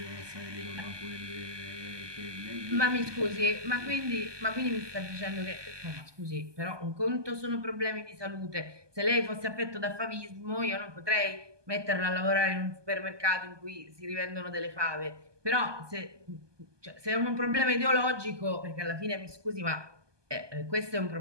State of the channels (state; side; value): late; left; 1.2 ms